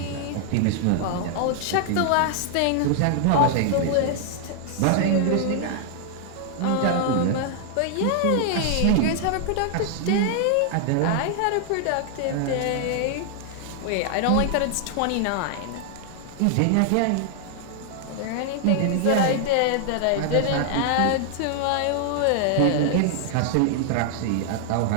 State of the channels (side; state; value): both; different; correlation 0.00